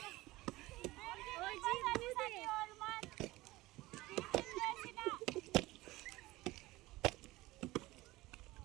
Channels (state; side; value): quieter; left; 19.2 dB